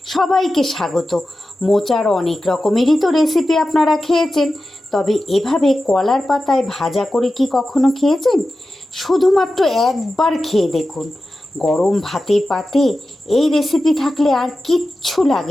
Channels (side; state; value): both; normal; correlation 0.93